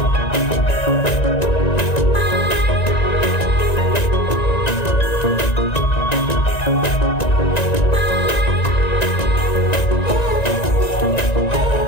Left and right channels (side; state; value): right; late; 1.9 ms